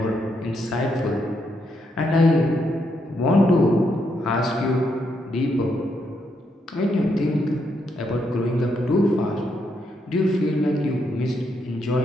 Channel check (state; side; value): normal; both; correlation 0.78